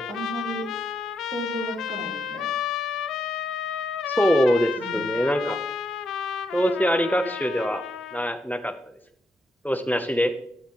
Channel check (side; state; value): both; normal; correlation 0.80